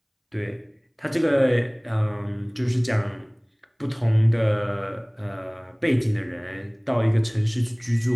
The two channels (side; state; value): both; identical; correlation 1.00